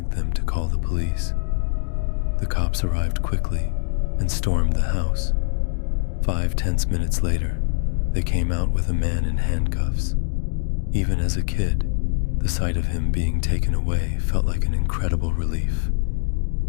them to call the police. The cops arrived quickly and stormed the house. 5 tense minutes later, they came out with a man in handcuffs. Even as a kid, the sight of him being taken away felt like an incredible relief.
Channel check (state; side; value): silent; right; digital silence